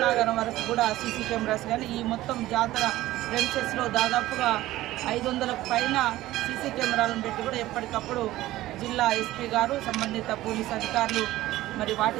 వరకు కూడా సీసీ కెమెరాస్ కానీ ఈ మొత్తం జాతర ప్రెమిసెస్లో దాదాపుగా 500కు పైన సీసీ కెమెరాలను పెట్టి కూడా ఎప్పటికప్పుడు జిల్లా ఎస్పీ గారు సంబంధిత పోలీస్ అధికారులు మరి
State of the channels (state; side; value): quieter; left; 16.1 dB